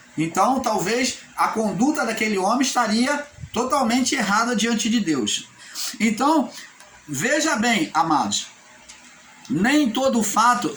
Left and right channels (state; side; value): identical; both; correlation 1.00